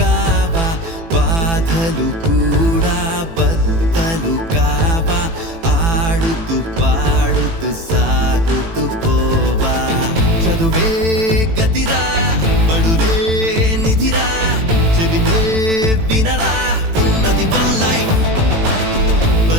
బాధలు కూడా బద్దలు కావా ఆడుతూ పాడుతూ సాగుతూ పోవా చదువే గతిరా బడులే నిధిరా చెబితే వినరా ఉన్నది వన్ లైఫ్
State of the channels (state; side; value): late; left; 18 ms